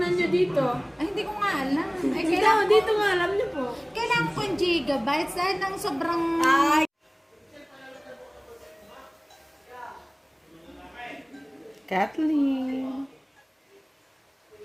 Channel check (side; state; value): both; identical; correlation 1.00